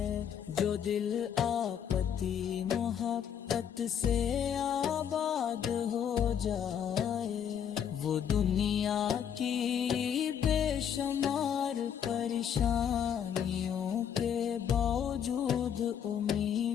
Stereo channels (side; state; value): right; quieter; 8.5 dB